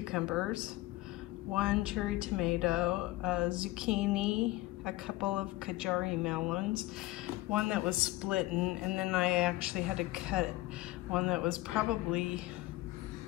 1 cherry tomato, a zucchini, a couple of Kajari melons, one that was splitting, and then I actually had to cut one that was probably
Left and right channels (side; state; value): right; quieter; 18.4 dB